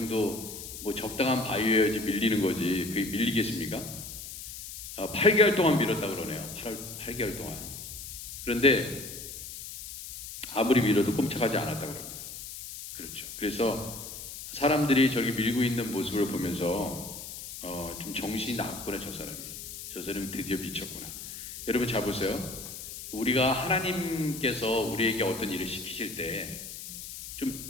뭐 적당한 바위여야지 밀리는 거지 그게 밀리겠습니까? 8개월 동안 밀었다 그러네요. 8개월 동안. 그런데 아무리 밀어도 꼼짝하지 않았다 그럽니다. 그렇죠. 그래서 사람들이 저렇게 밀고 있는 모습을 보면서 좀 정신이 나갔구나 저 사람이 드디어 미쳤구나. 여러분 잘 보세요. 우리가 하나님께서 우리에게 어떤 일을 시키실 때 좀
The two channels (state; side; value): noise; left; hiss, 10 dB below the sound